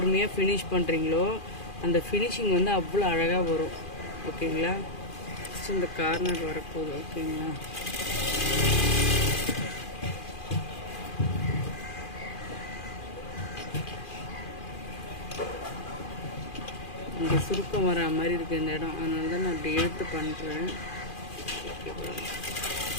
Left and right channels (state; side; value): late; right; 2.4 ms